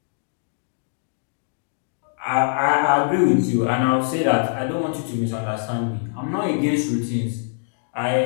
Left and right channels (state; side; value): silent; right; digital silence